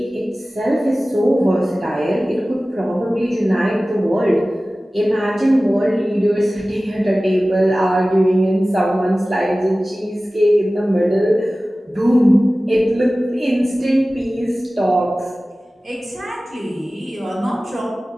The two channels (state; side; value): normal; both; correlation 0.97